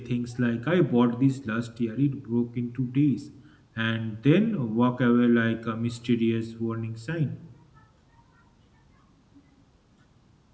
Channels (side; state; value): both; identical; correlation 1.00